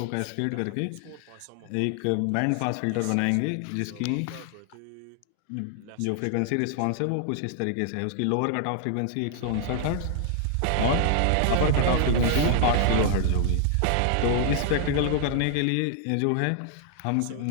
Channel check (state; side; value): different; both; correlation -0.01